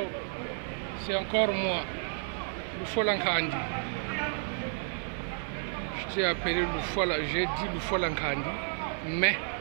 c'est encore moi, Lufola Nkandi. Je t'ai appelé Lufola, j'ai dit Lufola Nkandi, mais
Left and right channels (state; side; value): silent; left; 57 dB below the other